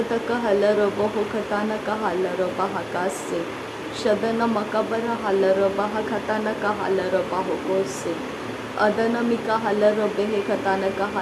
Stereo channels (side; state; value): both; identical; correlation 1.00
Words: हालर बहो खाताना का हालर बहा कासे शदन मकबर हालर बहा खाताना का हालर बहो कोसे अदन मिका हालर बेहे खाताना का